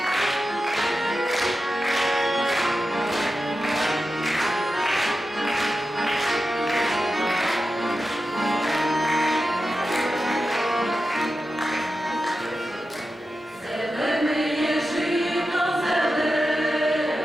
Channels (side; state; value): both; normal; correlation 0.91